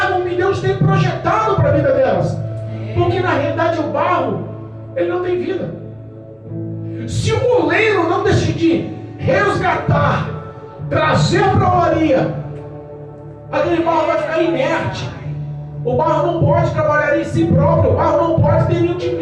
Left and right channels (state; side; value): identical; both; correlation 1.00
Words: o que Deus tem projetado para a vida delas. Porque na realidade o barro, ele não tem vida. Se o oleiro não decidir resgatar, trazer para a olaria, aquele barro vai ficar inerte. O barro não pode trabalhar em si próprio, o barro não pode ter nenhum tipo